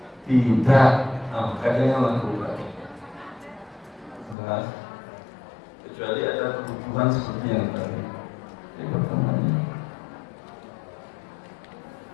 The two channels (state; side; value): drops out; right; at 4.4 s